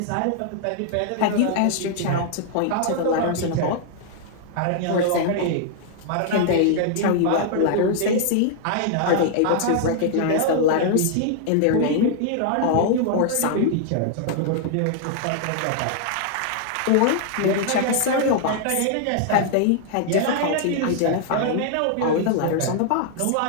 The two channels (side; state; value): both; different; correlation -0.01